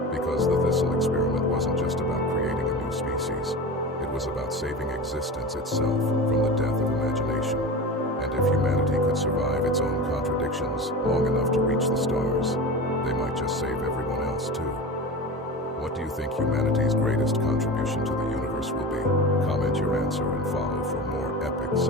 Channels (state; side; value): normal; both; correlation 0.30